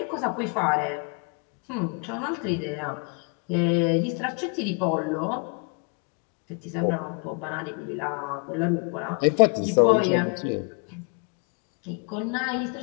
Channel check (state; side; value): quieter; right; 33.2 dB